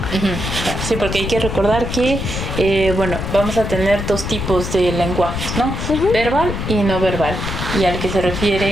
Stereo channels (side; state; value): left; noise; rumble, 4 dB below the sound